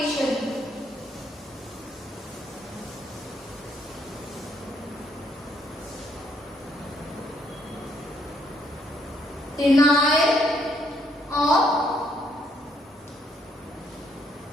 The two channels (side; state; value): both; normal; correlation 0.71